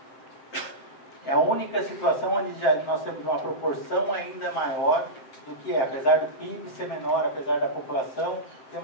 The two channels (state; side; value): late; right; 7.7 ms